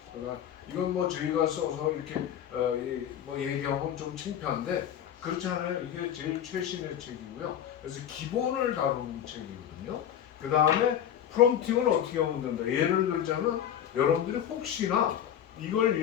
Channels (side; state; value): right; quieter; 9.8 dB